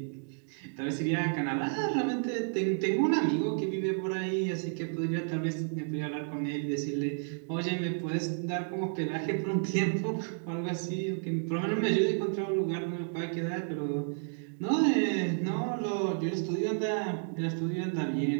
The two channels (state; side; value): silent; left; digital silence